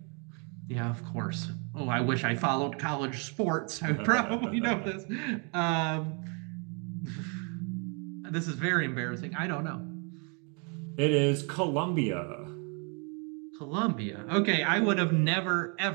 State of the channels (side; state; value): left; quieter; 36.1 dB